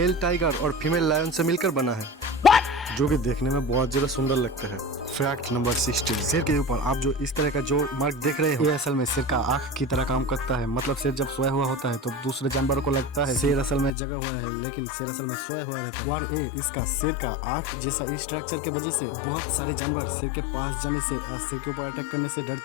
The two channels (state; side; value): drops out; right; at 13.9 s